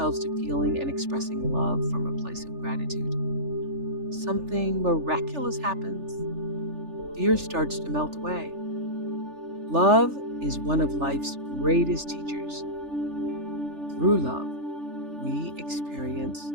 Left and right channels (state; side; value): late; left; 3.4 ms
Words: to feeling and expressing love from a place of gratitude, something miraculous happens. Fear starts to melt away. Love is one of life's greatest teachers. Through love, we experience